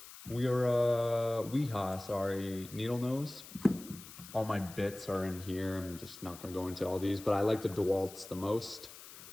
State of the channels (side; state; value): left; noise; hiss, 16 dB below the sound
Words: Needle nose. All my bits are in here. I'm just not going to go into all these, but I like the DeWalt's the most.